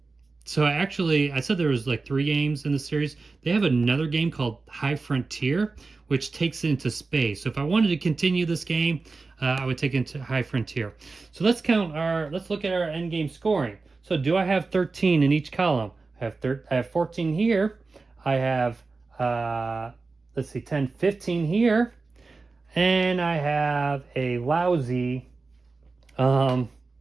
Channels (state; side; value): quieter; left; 3.9 dB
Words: So actually, I said there was like 3 games in the series. They have another game called High Frontier, which takes it into space. So if I wanted to continue this game, I would take it into High Frontier. So let's look at our end game scoring. So do I have 13 in each column? I have 14 here. I have, let's see, 10, 15 here. And I have a lousy, let's